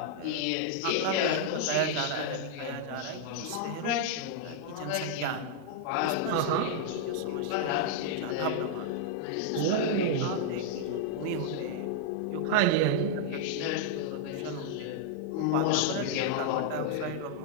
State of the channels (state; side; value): different; both; correlation -0.01